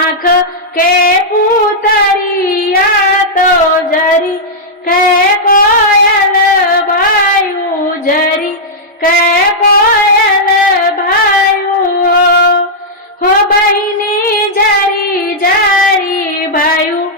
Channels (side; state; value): both; normal; correlation -0.08